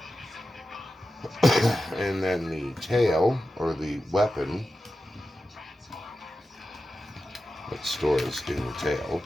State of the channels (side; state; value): both; normal; correlation 0.93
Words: And then the tail, or the weapon that stores in the tail,